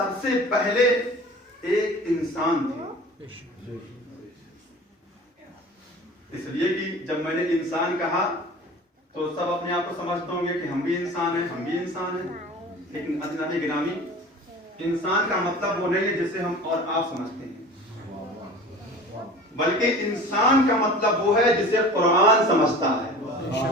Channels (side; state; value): both; normal; correlation 0.40